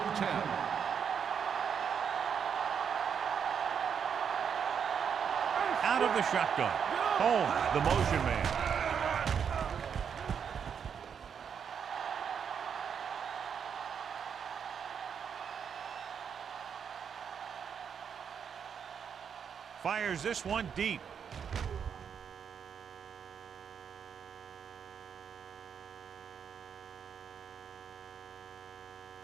10. out of the shotgun. Home, the motion man. Fires this one deep.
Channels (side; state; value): left; quieter; 7.3 dB